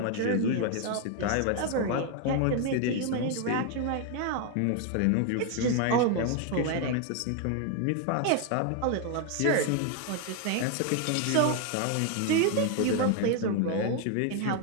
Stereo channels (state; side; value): different; both; correlation 0.01